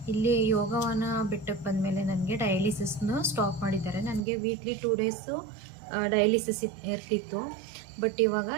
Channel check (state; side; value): drops out; left; at 4.2 s